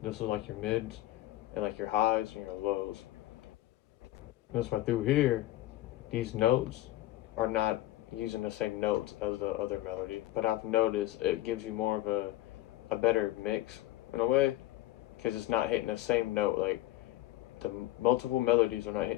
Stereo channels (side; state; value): right; quieter; 15.7 dB